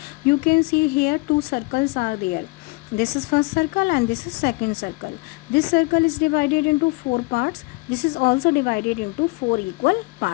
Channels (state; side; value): quieter; right; 26.0 dB